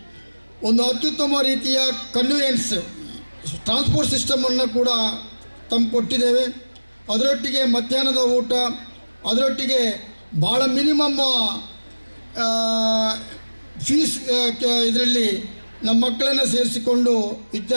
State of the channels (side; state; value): both; inverted; correlation -1.00